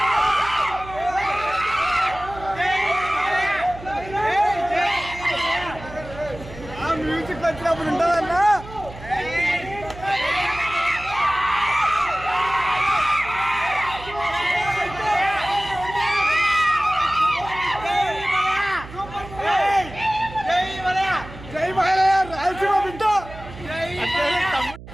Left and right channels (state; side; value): noise; right; hum, 15 dB below the sound